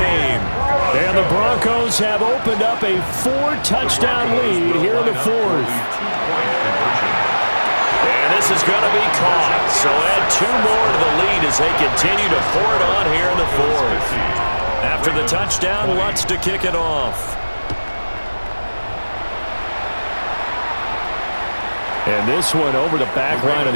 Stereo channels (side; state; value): both; inverted; correlation -1.00